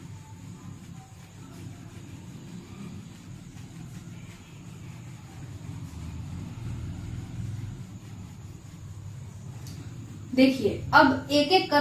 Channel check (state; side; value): identical; both; correlation 1.00